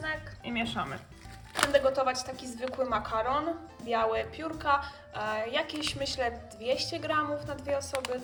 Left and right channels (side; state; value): both; identical; correlation 1.00